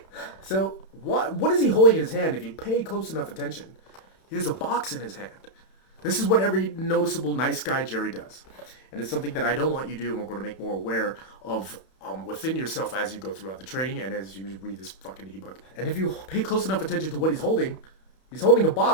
So what is he holding in his hand if you pay close enough attention? He has a box in his hand. This is what every noticeable nice guy Jerry does. And it's something that I don't want you to do, and we're going to make more aware of within yourself as you go throughout the training and as you read this fucking ebook. And if you pay close enough attention to what he's holding a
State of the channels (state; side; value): late; right; 31 ms